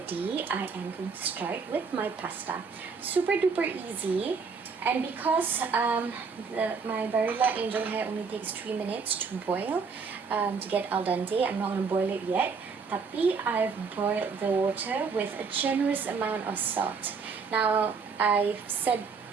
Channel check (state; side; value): quieter; left; 5.2 dB